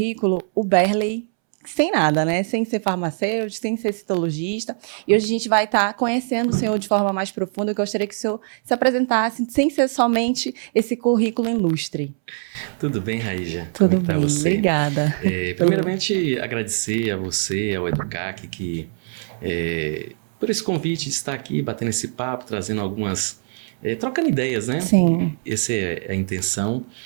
o Berley sem nada, né? Sem ser farmacêutico, sem ser citologista. E hoje a gente vai estar conhecendo o senhor de forma mais profunda. Eu gostaria que o senhor se apresentasse sem ser somente esse currículo ilustre. Tudo bem, Raíja? Tudo bem, você? Obrigada. Primeiramente, agradecer a você, ao EduCac, por esse convite de estar aqui, batendo esse papo, trazendo algumas... trocando ideias, né? Sim. Essa é a intenção.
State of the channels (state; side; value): silent; left; 63 dB below the other